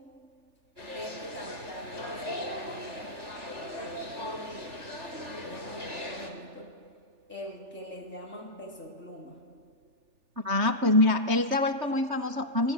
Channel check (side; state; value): left; late; 3.4 ms